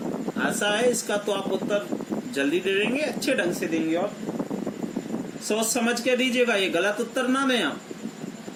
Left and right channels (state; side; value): identical; both; correlation 1.00